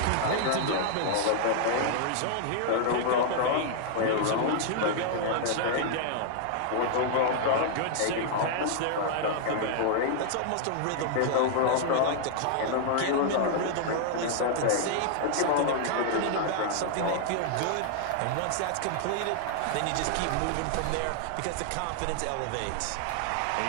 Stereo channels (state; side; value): different; both; correlation -0.01